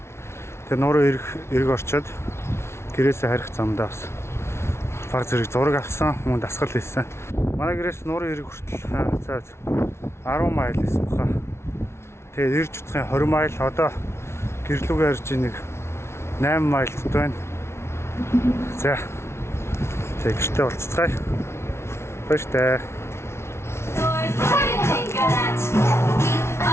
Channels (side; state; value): right; late; 0.13 ms